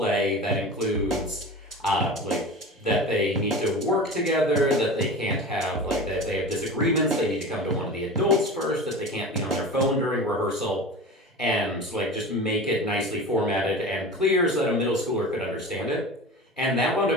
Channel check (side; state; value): both; normal; correlation 0.32